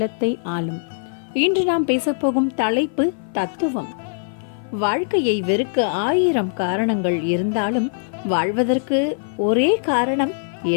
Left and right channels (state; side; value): silent; right; 57 dB below the other